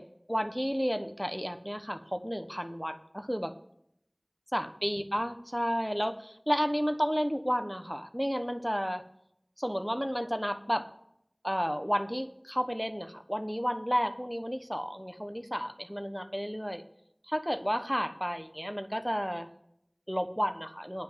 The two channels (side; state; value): both; identical; correlation 1.00